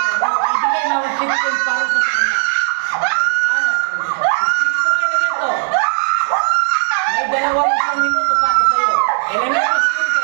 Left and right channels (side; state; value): left; silent; 69 dB below the other